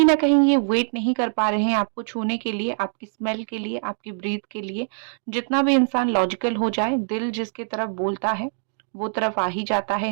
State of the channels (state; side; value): silent; left; digital silence